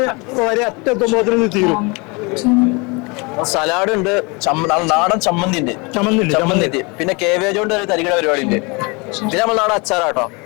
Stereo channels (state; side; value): quieter; right; 28.5 dB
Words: വരെ അറ്റെത്തുമ്പോ തീരും. സലാഡ് ഉണ്ട്, നാടൻ ചമ്മന്തി ഉണ്ട്, ചമ്മന്തി. പിന്നെ കേവേജ് കൊണ്ട് ഒരു തരികിട പരിപാടി ഉണ്ട്. പിന്നെ നമ്മൾ നാടൻ അച്ചാറാട്ടോ,